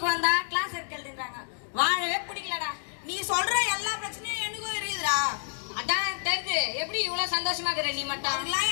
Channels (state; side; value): silent; right; digital silence